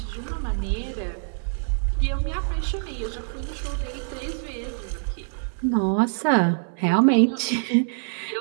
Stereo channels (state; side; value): silent; left; 58 dB below the other